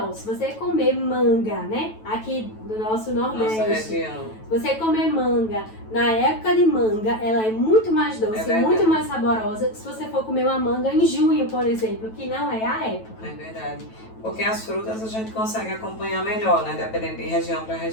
Se você comer manga, né? Aqui do nosso Nordeste. Nossa região. Se você comer manga, na época de manga, ela é muito mais doce, muito mais saborosa que se você for comer uma manga em junho, por exemplo, que não é a época. É verdade. Porque as frutas a gente consegue acompanhar melhor, né? Dependendo de região para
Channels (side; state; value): right; late; 9.1 ms